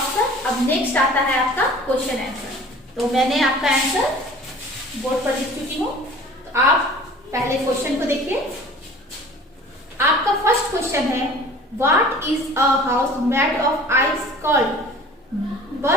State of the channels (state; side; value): normal; both; correlation 0.45